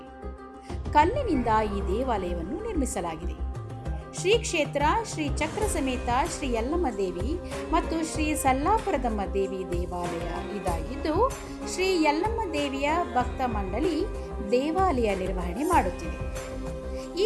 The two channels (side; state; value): both; identical; correlation 1.00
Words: ಕಲ್ಲಿನಿಂದ ಈ ದೇವಾಲಯವನ್ನು ನಿರ್ಮಿಸಲಾಗಿದೆ. ಶ್ರೀ ಕ್ಷೇತ್ರ ಶ್ರೀ ಚಕ್ರ ಸಮೇತ ಶ್ರೀ ಯಲ್ಲಮ್ಮ ದೇವಿ ಮತ್ತು ಶ್ರೀ ಸಲ್ಲಾಪುರದಮ್ಮ ದೇವಿ ದೇವಾಲಯ ಇದಾಗಿದ್ದು, ಶ್ರೀ ಯಲ್ಲಮ್ಮ ದೇವಿಯ ಭಕ್ತ ಮಂಡಳಿ ದೇವಾಲಯ ನಿರ್ವಹಣೆ ಮಾಡುತ್ತಿದೆ. ಈ